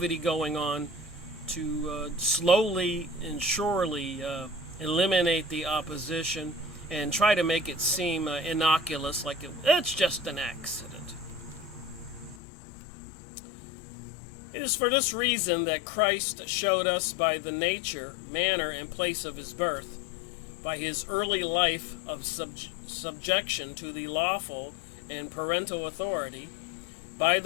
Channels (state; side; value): drops out; right; at 12.4 s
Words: going on to slowly and surely eliminate the opposition and try to make it seem innocuous, like it's just an accident. It is for this reason that Christ showed us by the nature, manner, and place of his birth, by his early life of subjection to the lawful and parental authority, by